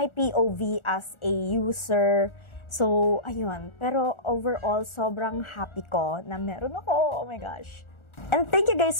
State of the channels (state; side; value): late; right; 1.4 ms